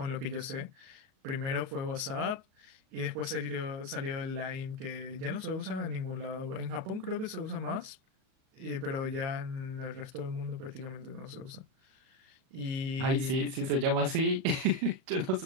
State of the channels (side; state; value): left; late; 38 ms